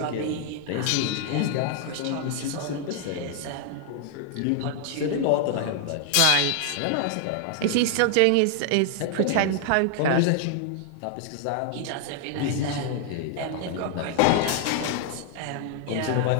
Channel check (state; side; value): different; both; correlation 0.00